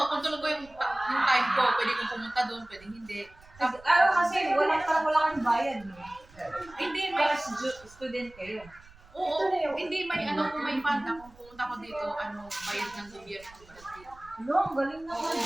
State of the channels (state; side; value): noise; right; rumble, 24 dB below the sound